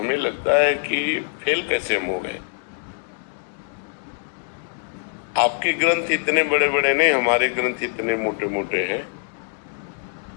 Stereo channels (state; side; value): silent; right; 63 dB below the other